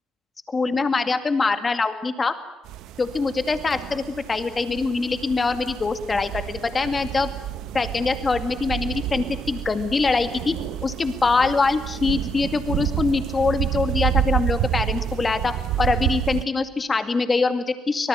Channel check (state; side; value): normal; both; correlation 0.80